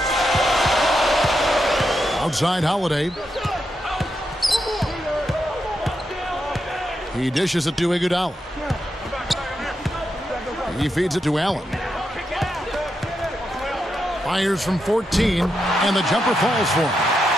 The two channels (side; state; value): both; normal; correlation 0.84